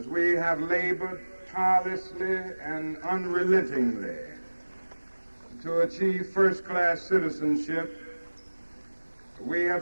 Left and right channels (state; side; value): inverted; both; correlation -1.00